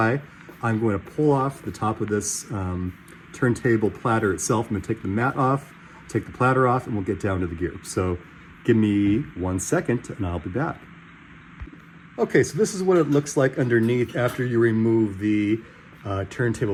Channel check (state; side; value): identical; both; correlation 1.00